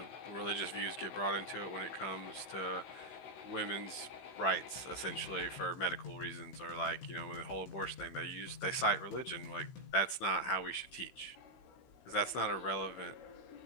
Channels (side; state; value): right; late; 16 ms